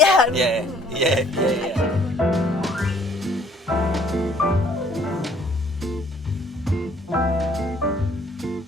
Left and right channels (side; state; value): both; normal; correlation 0.59